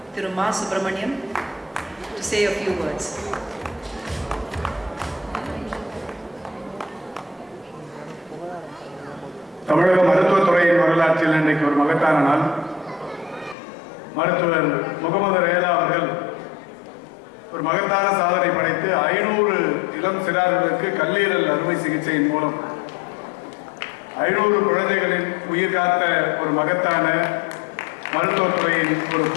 Thiru Ma Subramaniam, to say a few words. தமிழக மருத்துவத்துறையின் வரலாற்றில் இன்றைக்கு ஒரு மகத்தான நாள். மருத்துவர் முகமது ரேலா அவர்கள் ஒரு மகத்தான சாதனை படைத்து 500 இளம் சிறார்களுக்கு கல்லீரல் அறுவை சிகிச்சையின் மூலம் 500 குழந்தைகளின் உயிர் காத்த ஒரு மகத்தான மருத்துவத்துறையின் ஒரு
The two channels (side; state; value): right; drops out; at 13.6 s